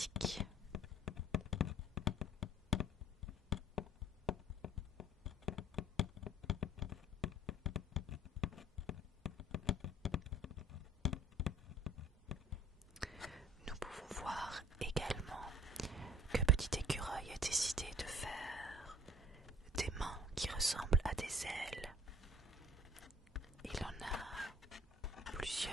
Nous pouvons voir également que Petit Écureuil a décidé de faire des mains qui ressemblent à des ailes. Il en a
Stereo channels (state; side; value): normal; both; correlation 0.54